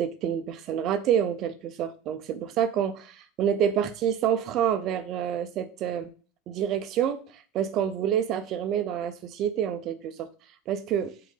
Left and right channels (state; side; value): quieter; left; 8.9 dB